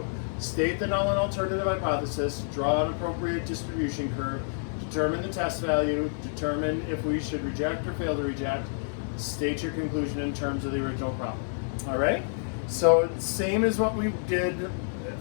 state the null and alternative hypothesis, draw an appropriate distribution curve, determine the test value, determine if we should reject or fail to reject, state your conclusion in terms of the original problem. All right? So same as what we did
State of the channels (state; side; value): silent; right; 59 dB below the other